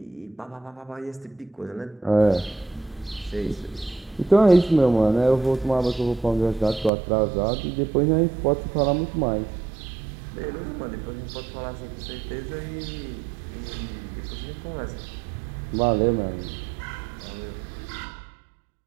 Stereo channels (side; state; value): left; drops out; at 6.9 s